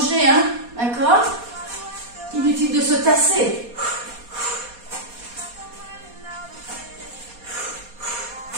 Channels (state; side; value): late; left; 4.2 ms